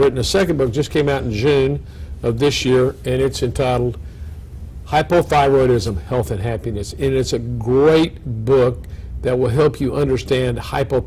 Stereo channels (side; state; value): both; identical; correlation 1.00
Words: a second book, just came out in June of this year, and it's entitled Hypothyroidism, Health, and Happiness. And it's a great book that will help you understand